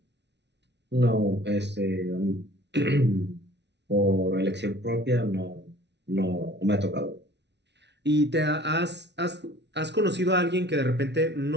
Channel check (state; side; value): late; left; 0.50 ms